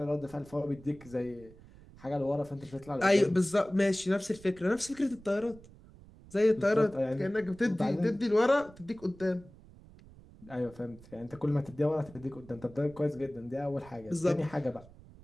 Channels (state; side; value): noise; right; rumble, 21 dB below the sound